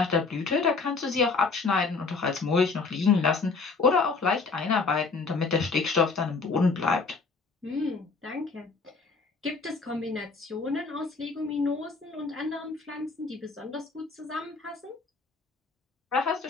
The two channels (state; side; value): quieter; right; 4.3 dB